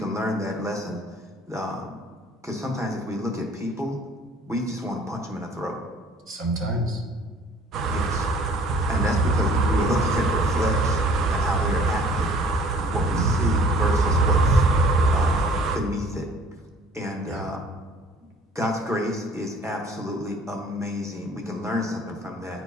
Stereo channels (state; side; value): normal; both; correlation 0.53